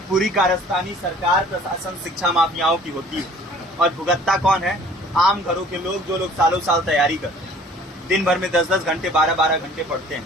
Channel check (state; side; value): normal; both; correlation 0.52